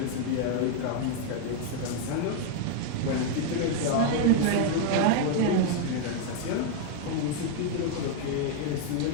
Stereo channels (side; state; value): both; different; correlation 0.00